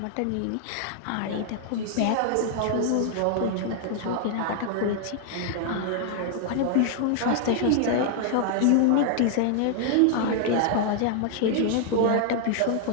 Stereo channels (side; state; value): both; different; correlation 0.00